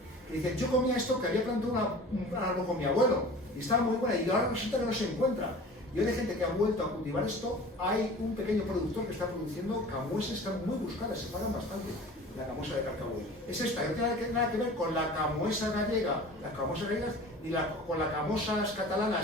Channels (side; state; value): both; normal; correlation 0.41